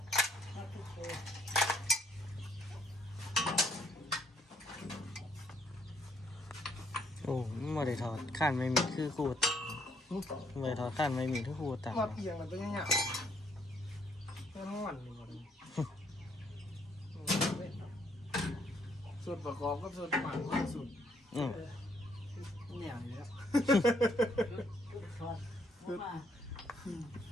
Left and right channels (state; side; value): normal; both; correlation 0.68